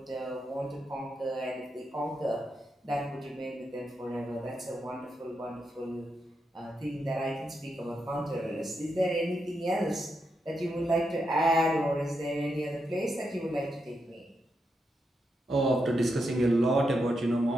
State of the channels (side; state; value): both; normal; correlation 0.84